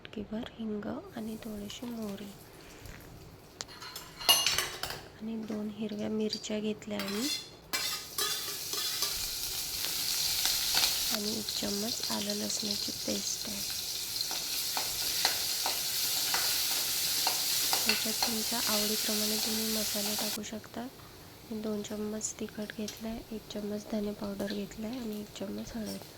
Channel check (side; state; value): both; identical; correlation 1.00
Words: हिंग आणि थोडीशी मोहरी, आणि 2 हिरव्या मिरच्या घेतल्या मी, आणि 1 चम्मच आलं लसणाची पेस्ट आहे। त्याच्यात तुमच्या आवडीप्रमाणे तुम्ही मसाले टाकू शकता। 2 चम्मच तिखट घेतलं आहे, 1 चम्मच धने पावडर घेतलं आहे आणि 1 चम्मच